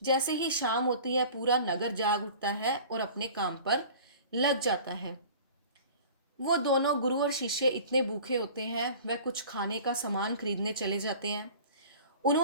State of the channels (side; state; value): both; inverted; correlation -0.43